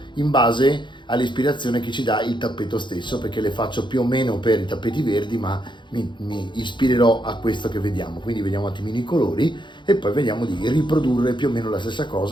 in base all'ispirazione che ci dà il tappeto stesso, perché le faccio più o meno per i tappeti verdi, ma mi ispirerò a questo che vediamo. Quindi vediamo un attimino i colori e poi vediamo di riprodurre più o meno la stessa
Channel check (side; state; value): right; late; 0.23 ms